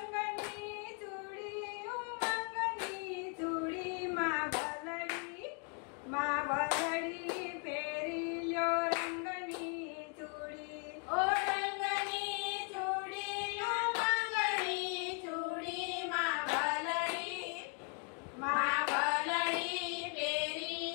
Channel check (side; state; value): right; quieter; 39.7 dB